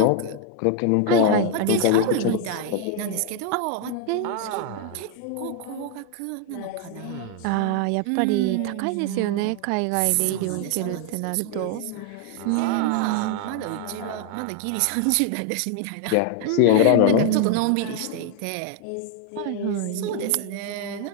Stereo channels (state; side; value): different; both; correlation 0.01